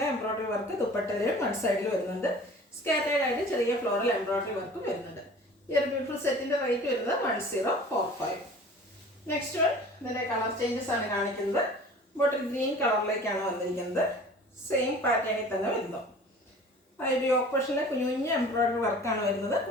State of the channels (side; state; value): both; normal; correlation 0.45